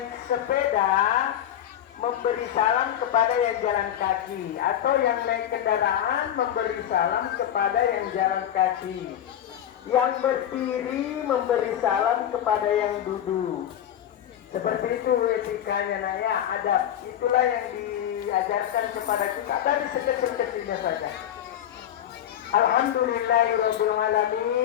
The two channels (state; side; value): quieter; right; 10.7 dB